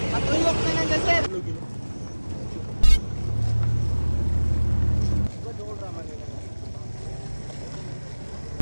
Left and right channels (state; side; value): inverted; both; correlation -1.00